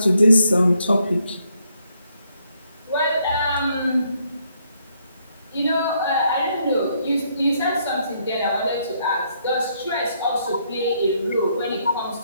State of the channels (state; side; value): inverted; both; correlation -0.73